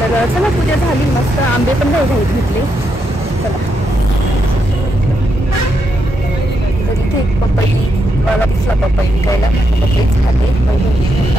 चला पूजा झाली मस्त, आंबे पण घाईत घेतले. चला तर इथे एक पपई मला दिसला, पपई विकायला, पपईच खाते.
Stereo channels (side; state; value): both; normal; correlation 0.81